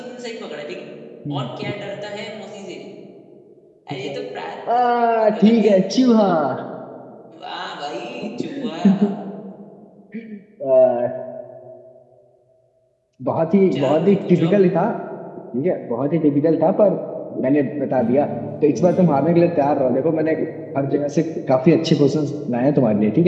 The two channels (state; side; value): identical; both; correlation 1.00